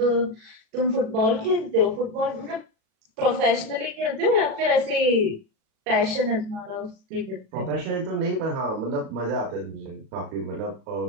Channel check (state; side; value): late; left; 37 ms